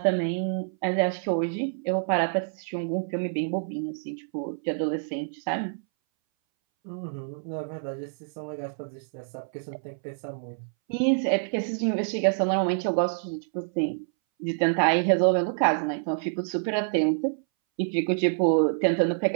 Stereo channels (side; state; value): left; silent; 60 dB below the other